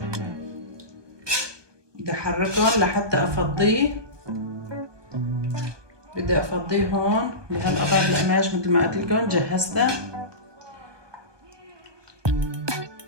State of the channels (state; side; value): late; left; 1.2 ms